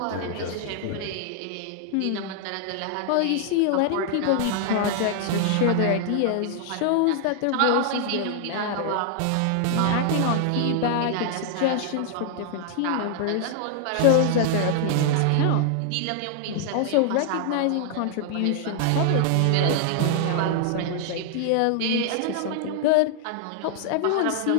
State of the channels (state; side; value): different; both; correlation -0.01